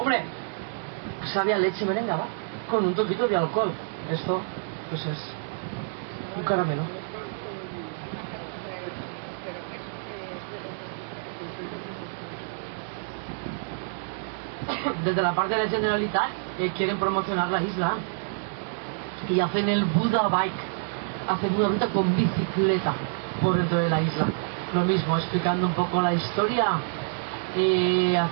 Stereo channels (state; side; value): silent; left; digital silence